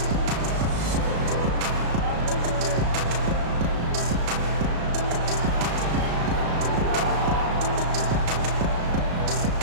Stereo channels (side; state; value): left; late; 35 ms